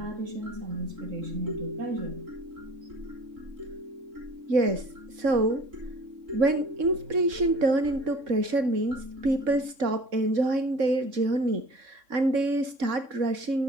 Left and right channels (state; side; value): late; left; 3.6 ms